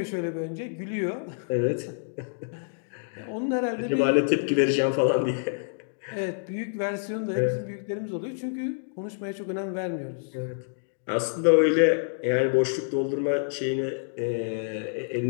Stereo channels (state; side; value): silent; right; digital silence